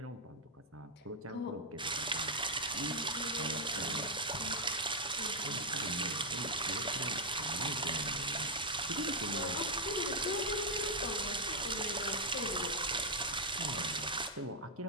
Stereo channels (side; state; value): both; normal; correlation -0.02